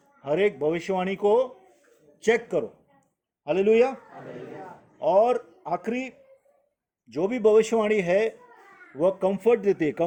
हर एक भविष्यवाणी को चेक करो। हालेलुया। और आखिरी जो भी भविष्यवाणी है वह कंफर्ट देती है।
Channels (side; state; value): both; identical; correlation 1.00